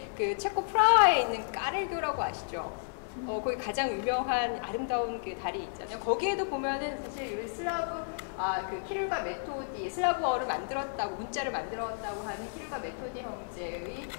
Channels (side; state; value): right; silent; digital silence